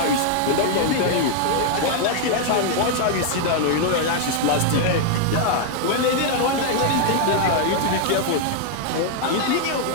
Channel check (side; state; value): both; different; correlation 0.00